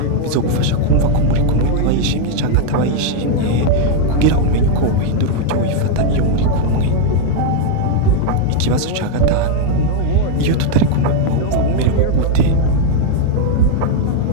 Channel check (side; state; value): both; different; correlation 0.00